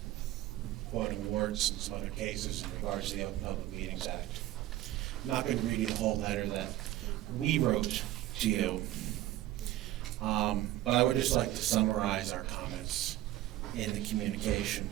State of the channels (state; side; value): quieter; left; 14.9 dB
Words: quoting awards and some other cases in regards to the Open Public Meetings Act. I'm not going to read you the whole letter that we wrote to you, but I would just like to summarize our comments in the communication